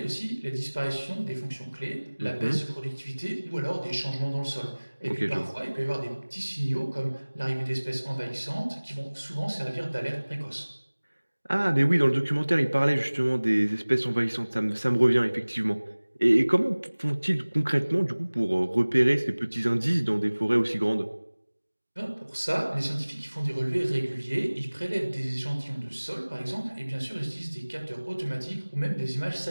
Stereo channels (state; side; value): inverted; both; correlation -1.00